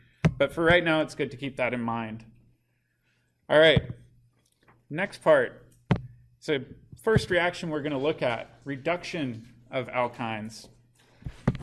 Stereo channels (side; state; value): both; identical; correlation 1.00